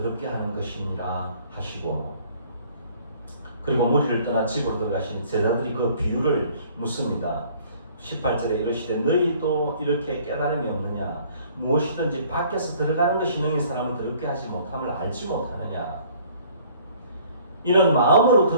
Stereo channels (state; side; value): inverted; both; correlation -0.56